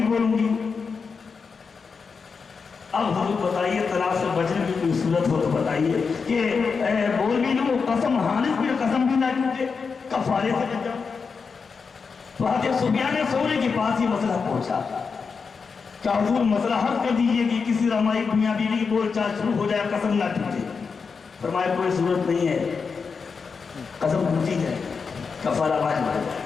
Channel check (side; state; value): right; quieter; 5.3 dB